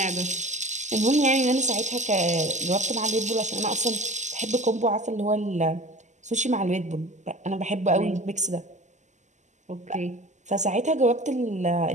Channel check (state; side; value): late; left; 0.34 ms